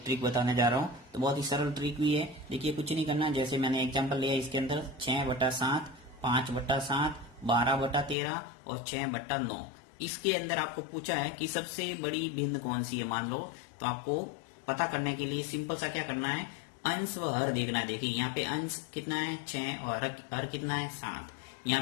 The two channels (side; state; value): right; drops out; at 8.2 s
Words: ट्रिक बताने जा रहा हूँ। तो बहुत ही सरल ट्रिक भी है। देखिए, कुछ नहीं करना, जैसे मैंने एग्जाम्पल लिया इसके अंदर 6/7, 5/7, 12/13 और 6/9। इसके अंदर आपको पूछा है कि सबसे बड़ी भिन्न कौन सी है, मान लो। तो आपको पता करने के लिए सिंपल सा क्या करना है, अंश व हर देखना है। देखिए, यहाँ पे अंश कितना है 6 और हर कितना है 7। यहाँ